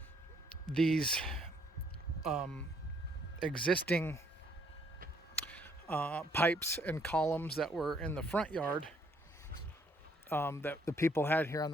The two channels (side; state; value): both; normal; correlation 0.67